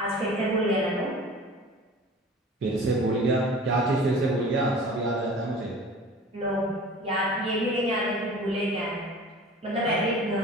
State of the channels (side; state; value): both; normal; correlation 0.42